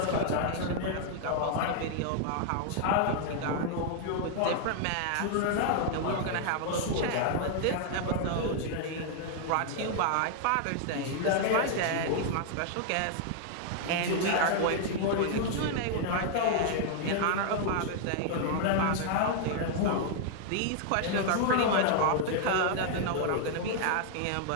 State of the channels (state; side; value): different; both; correlation -0.01